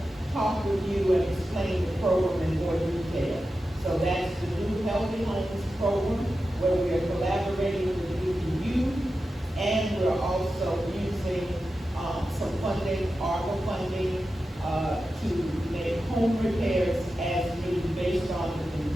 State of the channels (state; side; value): normal; both; correlation 0.92